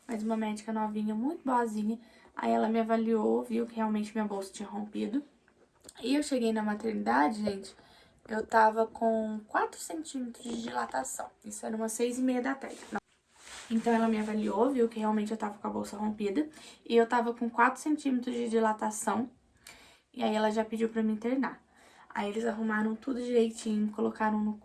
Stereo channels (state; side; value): identical; both; correlation 1.00